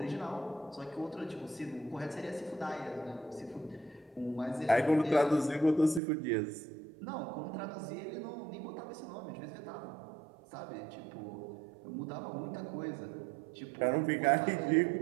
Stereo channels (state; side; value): drops out; left; at 6.0 s